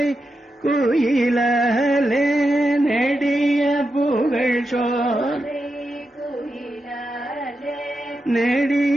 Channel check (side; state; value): both; normal; correlation 0.88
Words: குயிலாலே, நெடிய புகழ் சோலை